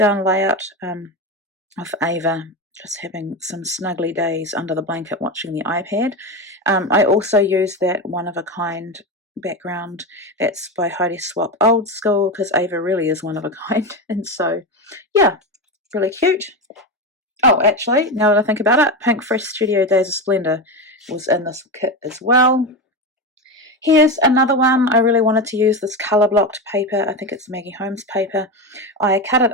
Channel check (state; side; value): normal; both; correlation 0.18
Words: layout of Ava just having some snuggly days under the blanket watching the iPad. I also used that one-of-a-kind background that's by Heidi Swapp Old School, because Ava really is one of a kind. And so, yeah, really cute. Oh, actually, now that I think about it, Pink Fresh Studio Days of Splendor was in this kit as well. Here's another one. I really wanted to use this colour blocked paper. I think it's Maggie Holmes paper. I cut it